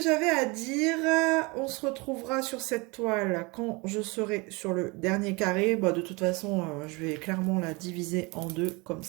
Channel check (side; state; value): left; quieter; 26.8 dB